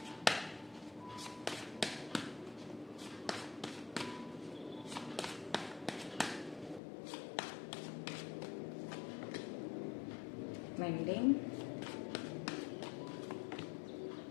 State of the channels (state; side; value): drops out; right; at 6.8 s